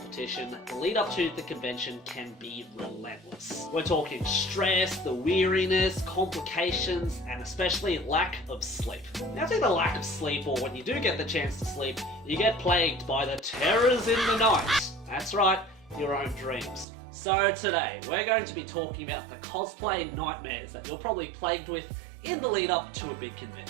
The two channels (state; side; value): drops out; left; at 16.9 s